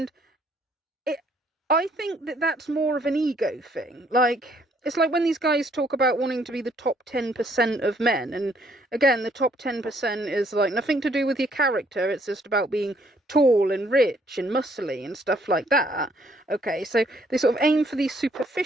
I think that that's more of an ego thing. Like, it's like when these guys talk about wanting to be the top 10% of men, and again, the top 10% is, like, nothing to do with your character, it's just about being tall and rich and muscly and stuff like that. Okay, so they sort of aim for these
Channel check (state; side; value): normal; both; correlation 0.66